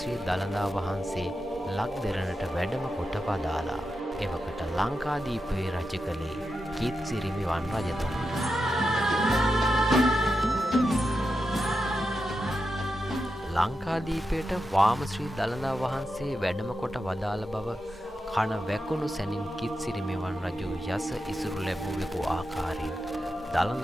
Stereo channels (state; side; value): normal; both; correlation 0.88